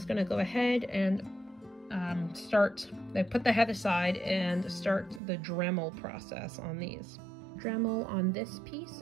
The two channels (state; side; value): drops out; left; at 5.2 s